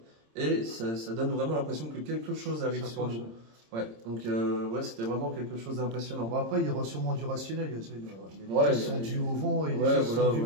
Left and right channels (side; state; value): left; late; 26 ms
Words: Et ça donne vraiment l'impression que quelque chose arrive sur nous. Ouais, donc ouais, c'était vraiment quelque chose d'impressionnant. Bon, après, il y aura sûrement du rationnel. Il y a des choses qui sont dues au vent et des choses qui sont dues